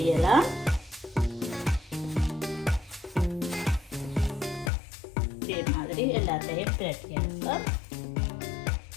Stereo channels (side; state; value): right; drops out; at 4.7 s